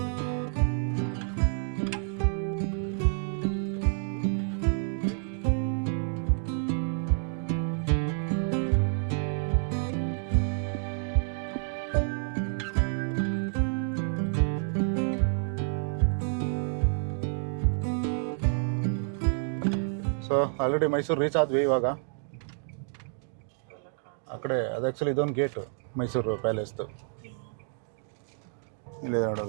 ಸೊ ಆಲ್ರೆಡಿ ಮೈಸೂರು ರೀಚ್ ಆದ್ವಿ ಇವಾಗ. ಅವೆಲ್ಲ ಕಾಣಿಸ್ ಆ ಕಡೆ ಅದು ಆ್ಯಕ್ಚುಲಿ ಇದೊಂದು ಗೇಟು ಮೈಸೂರು ಪ್ಯಾಲೇಸ್ದು. ಇಲ್ಲಿ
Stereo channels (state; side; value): silent; left; 58 dB below the other